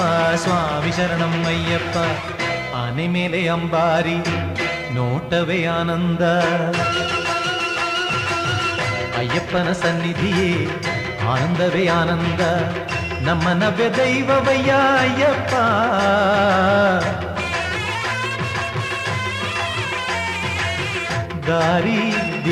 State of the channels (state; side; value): identical; both; correlation 1.00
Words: ಸ್ವಾಮಿ ಶರಣಂ ಅಯ್ಯಪ್ಪ. ಆನೆ ಮೇಲೆ ಅಂಬಾರಿ ನೋಟವೇ ಆನಂದ, ಅಯ್ಯಪ್ಪನ ಸನ್ನಿಧಿಯೇ ಆನಂದವೇ ಆನಂದ. ನಮ್ಮ ನವ್ಯ ದೈವವಯ್ಯ ಅಯ್ಯಪ್ಪ, ದಾರಿ